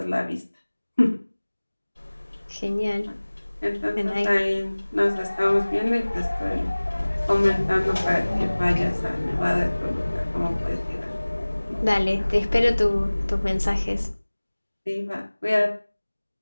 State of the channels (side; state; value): both; inverted; correlation -1.00